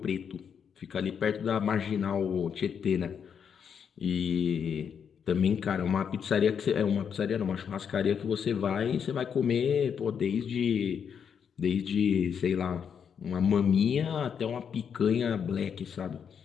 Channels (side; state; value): right; quieter; 7.4 dB